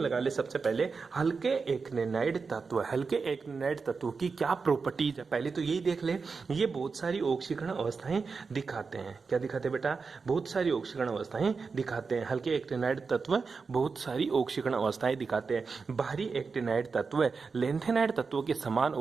ले सबसे पहले, हल्के एक्टिनाइड तत्व। हल्के एक्टिनाइड तत्व की क्या प्रॉपर्टीज है पहले तो यही देख ले। ये बहुत सारी ऑक्सीकरण अवस्थाएं दिखाते हैं। क्या दिखाते हैं बेटा? बहुत सारी ऑक्सीकरण अवस्थाएं दिखाते हैं। हल्के एक्टिनाइड तत्व बहुत सारी ऑक्सीकरण अवस्थाएं दिखाते हैं। भारी एक्टिनाइड तत्व लेंथेनाइड तत्वों के समान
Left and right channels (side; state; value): left; quieter; 4.8 dB